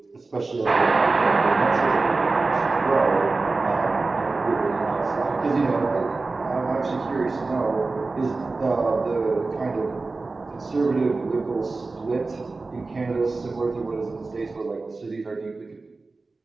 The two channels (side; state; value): left; quieter; 3.7 dB